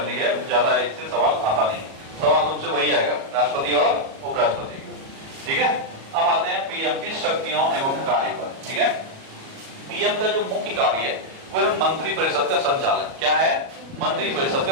है, ज्यादा इससे सवाल आता नहीं। सवाल तुमसे वही आएगा, राष्ट्रपति और उपराष्ट्रपति। ठीक है, अब आते हैं पीएम की शक्तियों एवं कार्य पर। ठीक है, पीएम का जो मुख्य कार्य है वो है मंत्री परिषद का संचालन। क्या है? मंत्री परिषद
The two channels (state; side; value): late; left; 37 ms